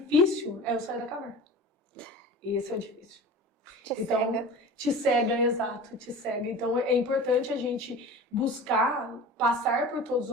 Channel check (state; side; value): normal; both; correlation 0.37